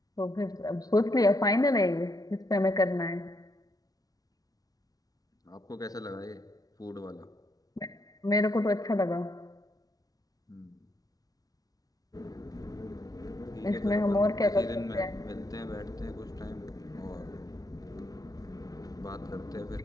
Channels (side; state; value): right; late; 0.18 ms